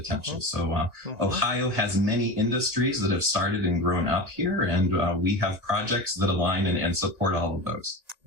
So Ohio has many industries that have started and grown up here, and we have projects that align and support all of those.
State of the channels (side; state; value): left; late; 1.9 ms